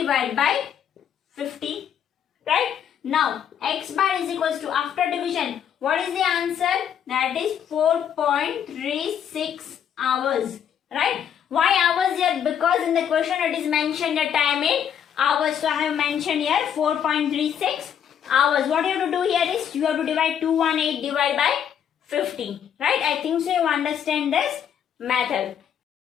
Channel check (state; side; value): quieter; right; 8.8 dB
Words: by 50, right? Now x bar is equals to, after division, what is the answer? That is 4.36 hours, right? Why hours here? Because in the question it is mentioned the time in hours. So I have mentioned here 4.36 hours. What you have to do here is you have to divide 218 divided by 50, right? I think so you understand this method.